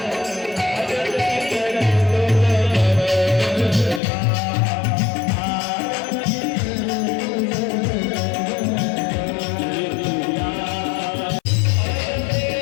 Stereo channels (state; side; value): drops out; right; at 4.0 s